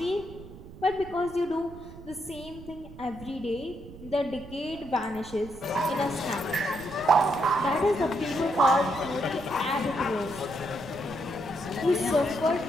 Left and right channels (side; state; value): right; noise; rumble, 16 dB below the sound